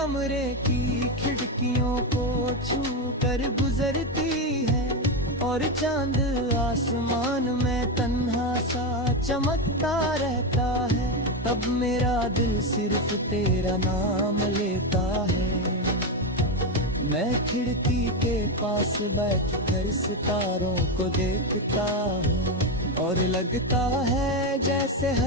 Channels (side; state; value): both; normal; correlation 0.11